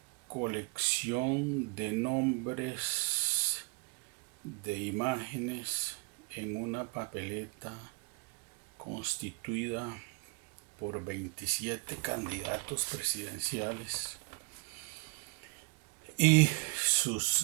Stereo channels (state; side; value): quieter; left; 31.5 dB